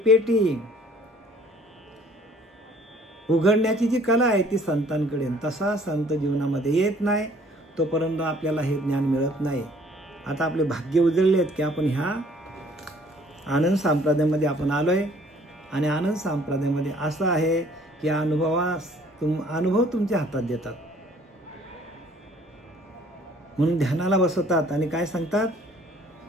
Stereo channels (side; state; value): both; normal; correlation 0.57